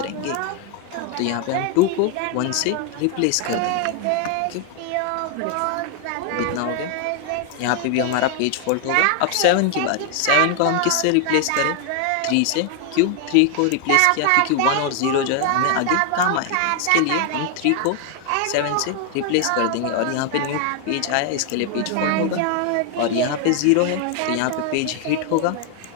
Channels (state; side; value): different; both; correlation 0.00